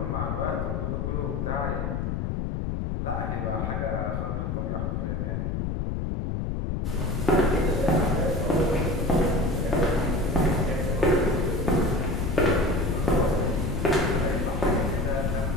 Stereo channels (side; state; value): left; noise; rumble, 1 dB below the sound